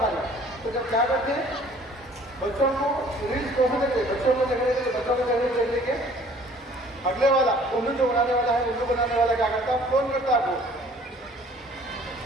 खाली। तो जब क्या करते हैं, बच्चों को रील्स को देते, बच्चों को देखने के लिए बच्चों को देखने लेके अगले वाला उल्लू जो बनाने वाला है, उल्लू बनाने वाला क्या करता है, फोन करता आपको,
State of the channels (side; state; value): both; normal; correlation 0.54